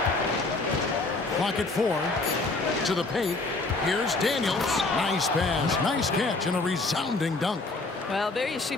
Clock at 4. To the paint. Here's Daniels. Nice pass, nice catch, and a resounding dunk. Well, there you see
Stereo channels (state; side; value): quieter; right; 3.4 dB